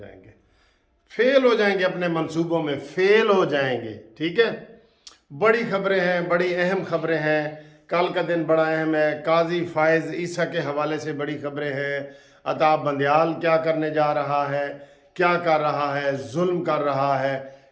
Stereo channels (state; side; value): identical; both; correlation 1.00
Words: फेल हो जाएंगे, अपने मंसूबों में फेल हो जाएंगे। ठीक है, बड़ी खबरें हैं, बड़ी अहम खबरें हैं। कल का दिन बड़ा अहम है। काजी फायज़ ईसा के हवाले से बड़ी खबरें हैं। अताब बंदयाल क्या करने जा रहा है, क्या कर रहा है, जुल्म कर रहा है।